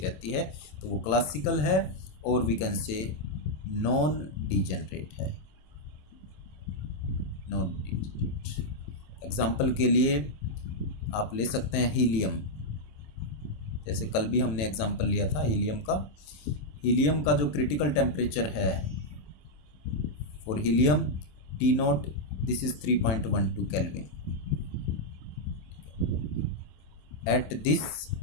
है, तो वो क्लासिकल है, और we can say non degenerate है, नॉन डीजेनरेट। एग्जाम्पल के लिए आप ले सकते हैं हीलियम, जैसे कल भी हमने एग्जाम्पल लिया था हीलियम का। हीलियम का जो क्रिटिकल टेम्परेचर है for helium T not, this is 3.12 kelvin. At this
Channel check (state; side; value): late; right; 27 ms